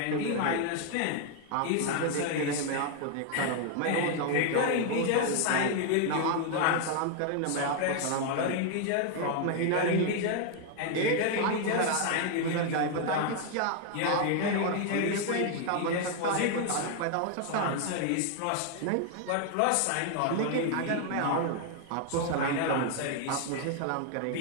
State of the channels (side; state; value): both; different; correlation 0.00